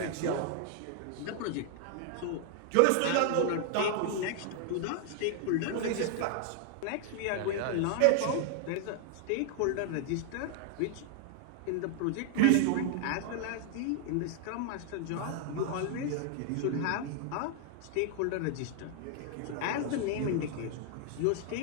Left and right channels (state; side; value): different; both; correlation 0.00